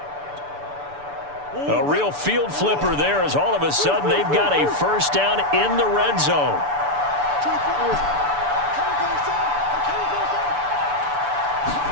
A real field flipper there as all of a sudden they've got a first down in the red zone.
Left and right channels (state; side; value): late; left; 6.9 ms